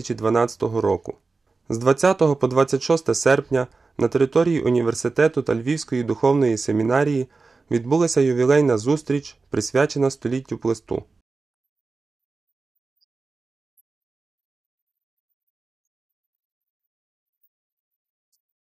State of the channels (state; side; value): quieter; left; 4.0 dB